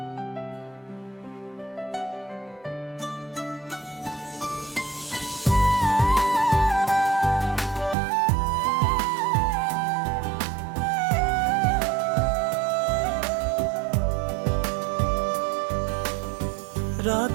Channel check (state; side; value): drops out; left; at 8.0 s